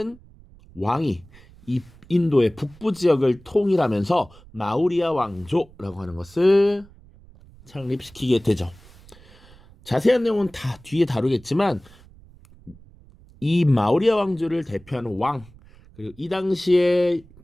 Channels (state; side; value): noise; right; rumble, 24 dB below the sound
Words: 왕이 이 인도의 북부 지역을 통일하면서 마우리아 왕조라고 하는 것을 창립시키게 되죠. 자세한 내용은 다 뒤에 다루겠지만 이 마우리아 왕조를 대표하는 왕, 그리고 이 당시에